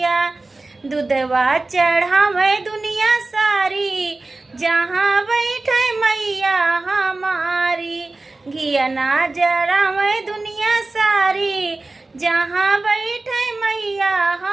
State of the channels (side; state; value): left; quieter; 3.2 dB